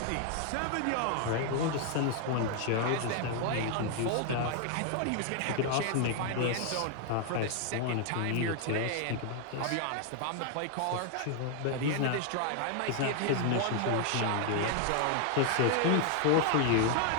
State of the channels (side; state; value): both; different; correlation 0.00